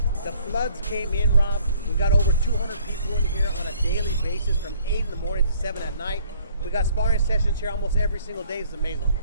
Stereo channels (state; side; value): inverted; both; correlation -0.59